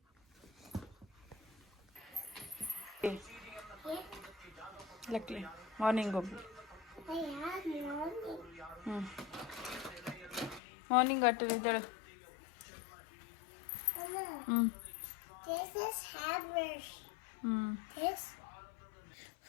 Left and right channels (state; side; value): drops out; right; at 10.6 s